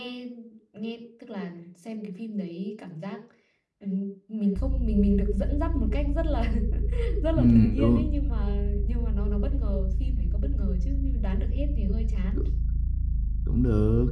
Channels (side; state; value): both; identical; correlation 1.00